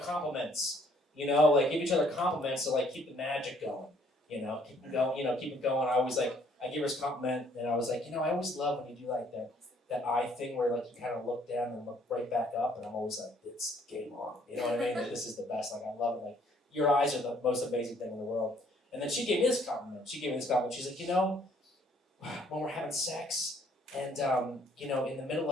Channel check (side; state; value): both; normal; correlation 0.63